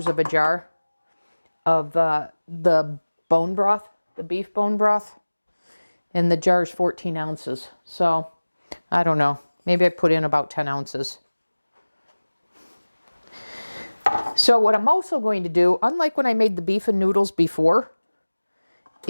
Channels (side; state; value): both; inverted; correlation -1.00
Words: of a jar of the bone broth, the beef bone broth, and the jar is 14 ounces. So I don't know. Maybe I put in about 10 ounces. So what I'm also going to do, unlike when I made the beef and noodles before,